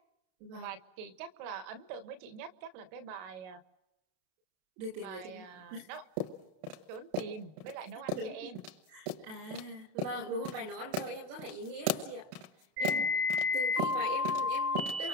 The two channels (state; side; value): late; left; 32 ms